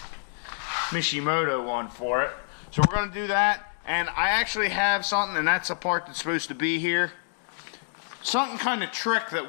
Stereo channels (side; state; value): right; silent; digital silence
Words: Mishimoto one for it. So we're going to do that. And I actually have something, and that's a part that's supposed to be here. Something kind of trick that